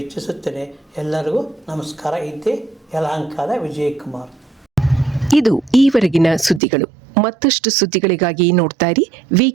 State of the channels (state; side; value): drops out; left; at 6.6 s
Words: ಇಚ್ಛಿಸುತ್ತೇನೆ. ಎಲ್ಲರಿಗೂ ನಮಸ್ಕಾರ. ಇದ್ದೆ ಯಲಹಂಕದ ವಿಜಯಕುಮಾರ್. ಇದು ಈವರೆಗಿನ ಸುದ್ದಿಗಳು. ಮತ್ತಷ್ಟು ಸುದ್ದಿಗಳಿಗಾಗಿ ನೋಡ್ತಾ ಇರಿ